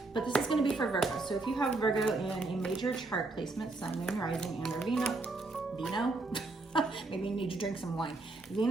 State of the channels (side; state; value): left; quieter; 3.2 dB